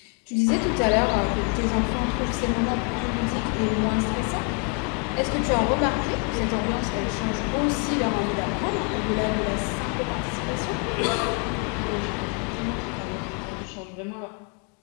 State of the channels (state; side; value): quieter; right; 37.4 dB